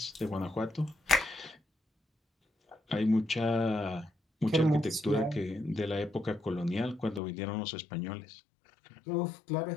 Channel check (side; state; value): right; drops out; at 7.2 s